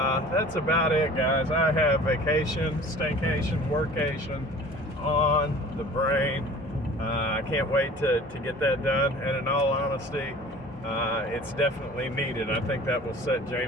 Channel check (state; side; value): normal; both; correlation 0.44